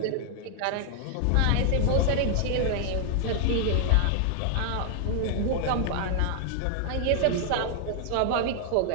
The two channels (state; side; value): different; both; correlation 0.00